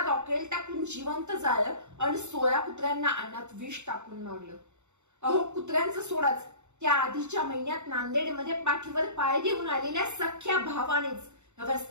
रॉकेल टाकून जिवंत जाळलं आणि 16 कुत्र्यांना अन्नात विष टाकून मारलं. अहो, कुत्र्यांचं सोडाच, त्या आधीच्या महिन्यात नांदेडमध्ये पाठीवर पाय घेऊन आलेल्या सख्या भावानेच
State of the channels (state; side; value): late; left; 0.83 ms